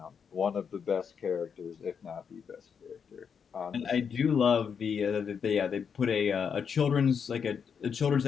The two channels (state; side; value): quieter; right; 6.8 dB